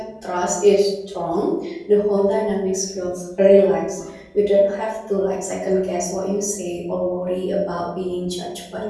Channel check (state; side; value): identical; both; correlation 1.00